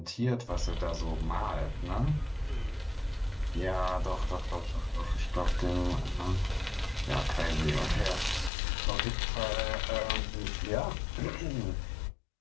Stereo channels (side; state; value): right; drops out; at 8.5 s